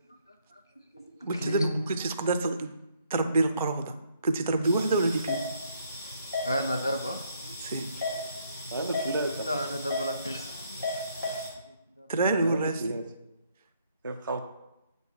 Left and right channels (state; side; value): inverted; both; correlation -0.69